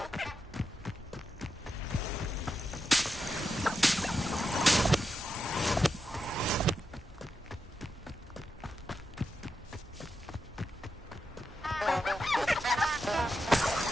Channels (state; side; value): normal; both; correlation 0.87